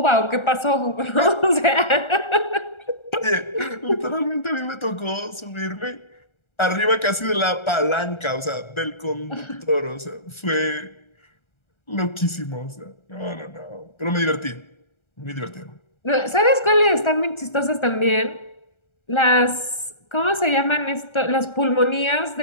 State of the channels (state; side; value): late; right; 1.3 ms